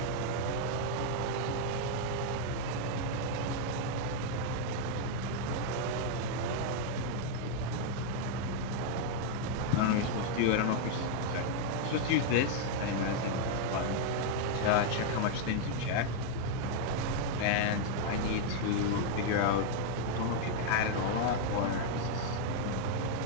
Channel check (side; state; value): both; different; correlation 0.00